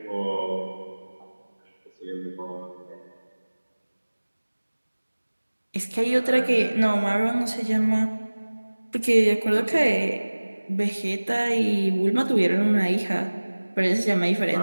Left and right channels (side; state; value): both; inverted; correlation -1.00